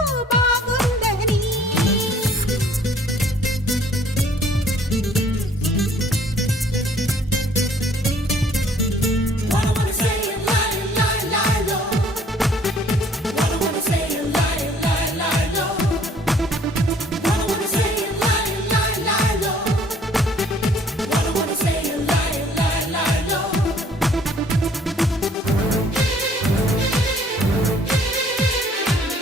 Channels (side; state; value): both; normal; correlation 0.59